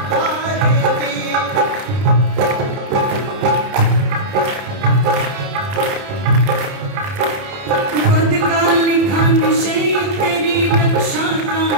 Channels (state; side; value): late; left; 30 ms